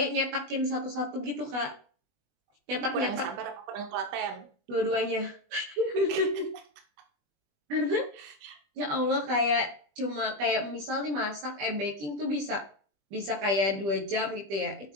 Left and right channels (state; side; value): late; left; 20 ms